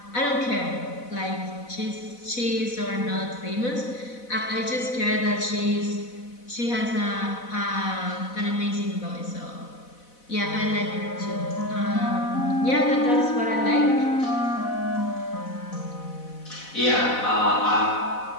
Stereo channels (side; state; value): right; late; 4.0 ms